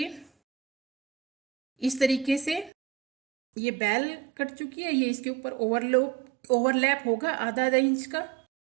इस तरीके से ये बेल कट चुकी है। ये इसके ऊपर ओवरलैप होगा आधा इंच का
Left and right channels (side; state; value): left; drops out; at 2.7 s